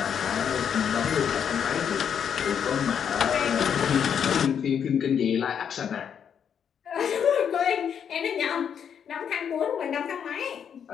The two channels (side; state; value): right; quieter; 8.0 dB